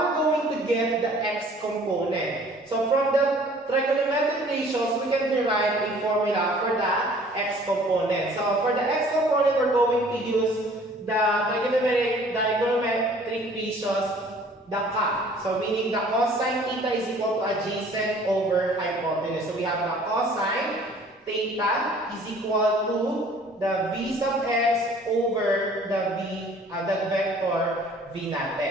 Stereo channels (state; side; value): normal; both; correlation 0.53